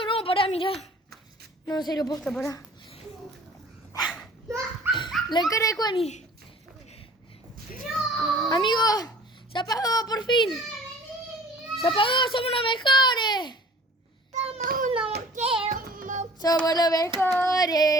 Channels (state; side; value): normal; both; correlation 0.49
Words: no, pará, mira. No, en serio, posta, pará. La cara de Juani. Amigo, se apagó por fin. Se apagó, somos los mejores. Somos los